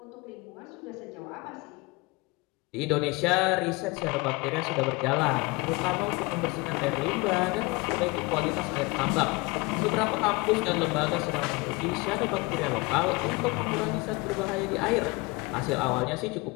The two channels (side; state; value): right; quieter; 24.8 dB